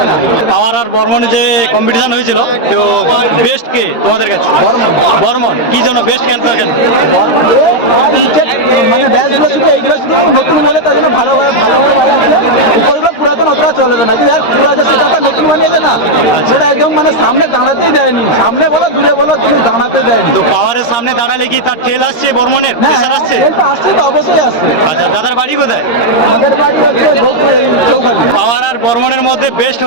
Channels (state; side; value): late; right; 13 ms